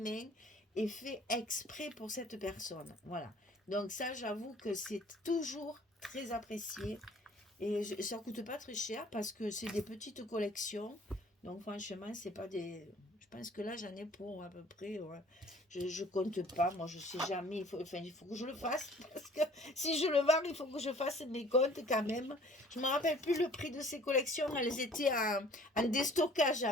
et fait exprès pour cette personne. Voilà. Donc ça, j'avoue que c'est toujours très apprécié. Et ça coûte pas très cher parce que c'est des petites collections. Donc franchement, c'est pas des... Je pense que là, j'en ai pour à peu près... Ouais. Je compte pas, moi je sais jamais. Il faut que je le fasse. Parce que si je le vends, il faut que je fasse mes comptes quand même. Je me rappelle plus le prix de ces collections. Elles étaient en déstockage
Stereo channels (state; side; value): normal; both; correlation 0.53